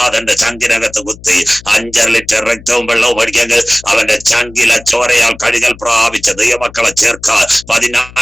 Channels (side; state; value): left; noise; hum, 20 dB below the sound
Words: ചങ്കിനകത്ത് കുത്തി 5 ലിറ്റർ രക്തവും വെള്ളവും ഒഴിക്കെങ്കിൽ അവന്റെ ചങ്കിലെ ചോരയാൽ കഴുകൽ പ്രാപിച്ച ദൈവമക്കളെ ചേർക്കാൻ